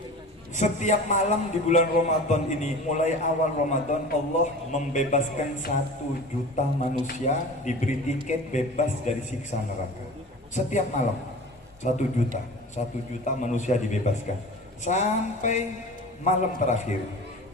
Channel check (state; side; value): normal; both; correlation 0.37